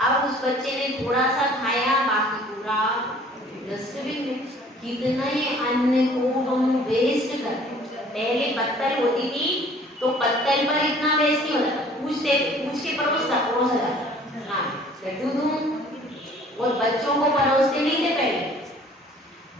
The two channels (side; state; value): both; normal; correlation 0.53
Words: उस बच्चे ने थोड़ा सा खाया, बाकी पूरा डस्टबिन में। कितना ही अन्न को हम वेस्ट करते हैं। पहले पत्तल होती थी तो पत्तल पर इतना वेस्ट नहीं होता, पूछ के परोसा जाता, हाँ लड्डू दूं, और बच्चों को परोसते नहीं थे पहले।